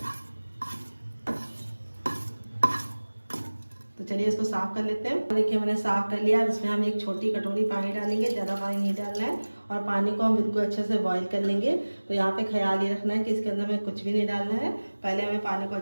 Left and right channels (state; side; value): inverted; both; correlation -1.00